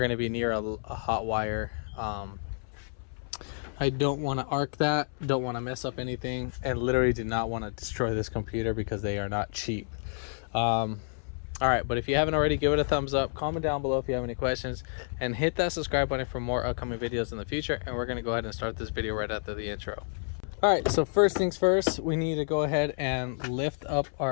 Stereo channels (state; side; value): silent; right; 58 dB below the other